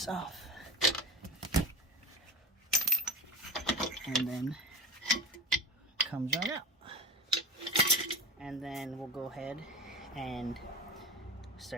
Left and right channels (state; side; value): normal; both; correlation 0.31